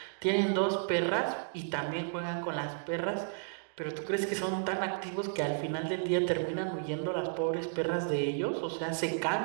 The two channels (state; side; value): silent; left; digital silence